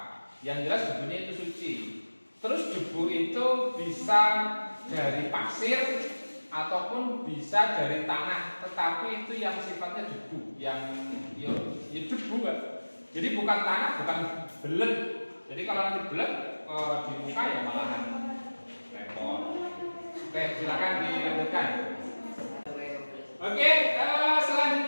Yang jelas debunya itu suci. Terus debu itu bisa dari pasir ataupun bisa dari tanah, tetapi itu yang sifatnya debu, yang ya debu kan. Jadi bukan tanah, bukan belet. Jadi kalau nanti belet di muka ya malahan repot. Oke, silakan dilanjutkan. Oke,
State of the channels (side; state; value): both; inverted; correlation -1.00